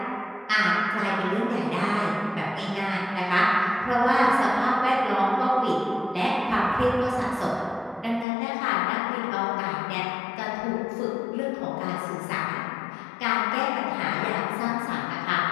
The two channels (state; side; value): drops out; right; at 8.2 s